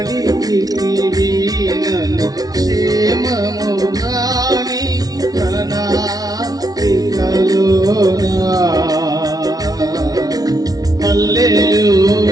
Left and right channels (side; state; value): left; late; 0.18 ms